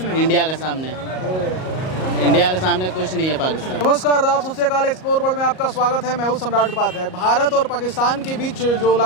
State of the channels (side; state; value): right; late; 38 ms